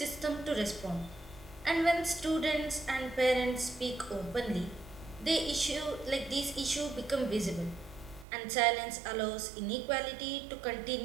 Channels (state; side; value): drops out; left; at 8.2 s